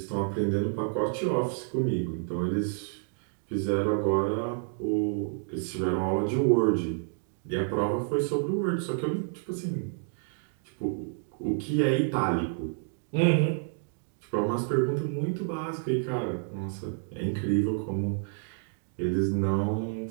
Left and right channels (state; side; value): silent; left; 58 dB below the other